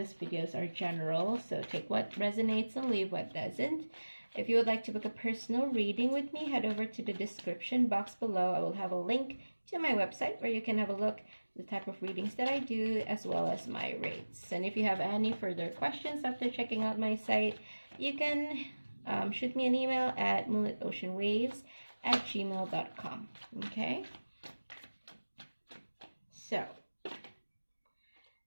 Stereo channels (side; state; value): both; inverted; correlation -1.00